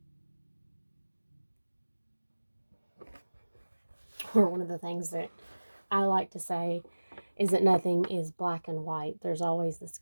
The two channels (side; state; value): both; inverted; correlation -1.00